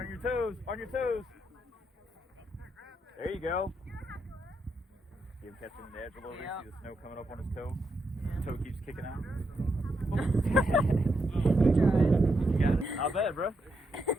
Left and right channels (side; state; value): both; normal; correlation 0.82